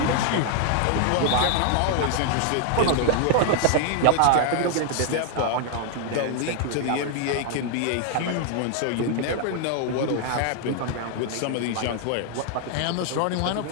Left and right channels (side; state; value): both; different; correlation 0.00